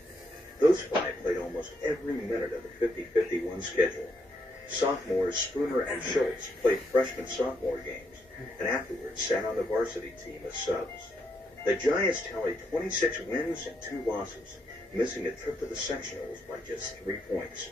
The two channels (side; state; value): both; normal; correlation 0.77